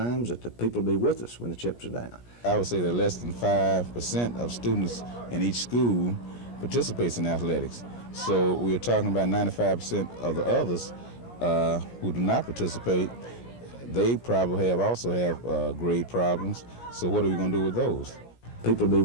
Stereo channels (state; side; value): late; right; 17 ms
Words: that the people will be with us when the chips are down. I would say that less than 5% of students in each school participates in athletics. So we're talking about 95% of the others who do not participate. They probably also have grade problems. So what are we going to do with those? People will